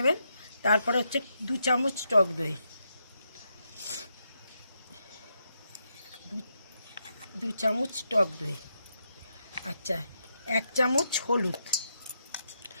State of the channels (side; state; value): both; inverted; correlation -0.82